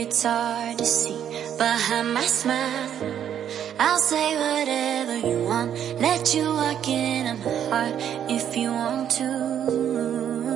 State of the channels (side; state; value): left; quieter; 9.5 dB